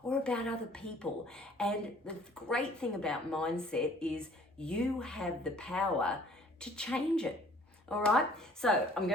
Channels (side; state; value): both; normal; correlation 0.55